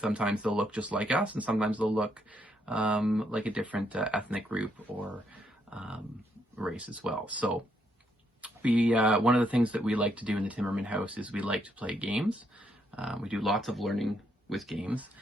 Sometimes they'll look just like us, and sometimes they'll look like a different ethnic group or race as well. So one of the things that we like to do in the Timmerman House is we like to play games. We do lots of learning with games,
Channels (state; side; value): normal; both; correlation 0.75